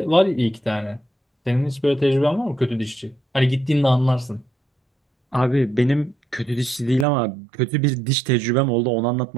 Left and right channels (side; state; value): left; drops out; at 7.1 s